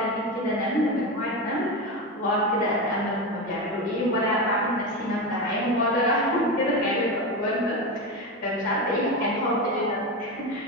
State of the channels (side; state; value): both; normal; correlation 0.18